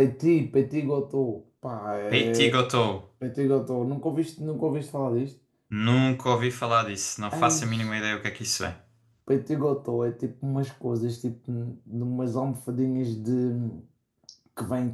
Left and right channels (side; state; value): both; identical; correlation 1.00